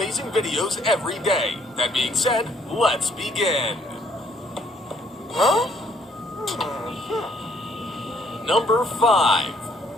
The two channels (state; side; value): normal; both; correlation 0.65